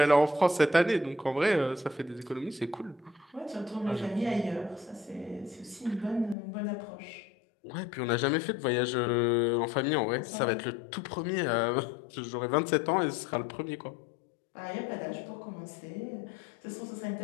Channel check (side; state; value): right; drops out; at 6.4 s